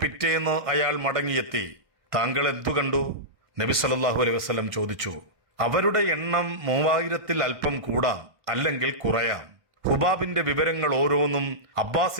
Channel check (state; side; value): late; left; 1.6 ms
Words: അയാൾ മടങ്ങിയെത്തി. താങ്കൾ എന്തു കണ്ടു? നബി സല്ലല്ലാഹു അലൈഹി വസല്ലം ചോദിച്ചു. അവരുടെ എണ്ണം 3000-ൽ അല്പം കൂടാം, അല്ലെങ്കിൽ കുറയാം. ഹുബാബിന്റെ വിവരങ്ങൾ ഓരോന്നും